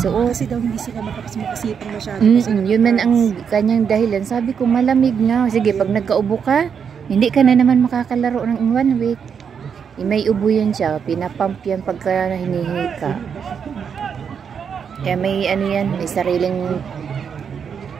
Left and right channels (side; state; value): left; quieter; 7.0 dB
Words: Kasi daw hindi sila makasipang masyado. Kasi Yun man ang kanyang dahilan. Sabi ko, malamig na. Sige, pag nagkaubo ka, hindi ka na naman makakalaro ng 1 week. May ubo yan siya. Pinapump yan pagka hinihingi ka. Kaya may ano yan, may sariling